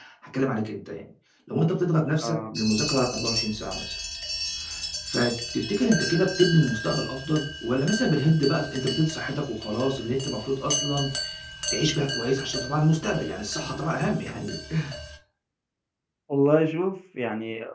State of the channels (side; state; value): both; identical; correlation 1.00